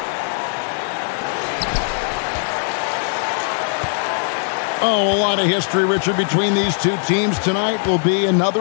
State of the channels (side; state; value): right; silent; digital silence